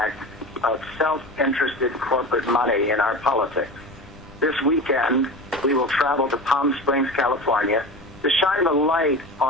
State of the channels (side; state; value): left; noise; rumble, 23 dB below the sound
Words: of self-interested corporate money in our politics. This weekend, we will travel to Palm Springs, California, to shine the light